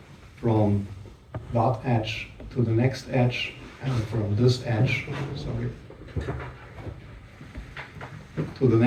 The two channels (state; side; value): identical; both; correlation 1.00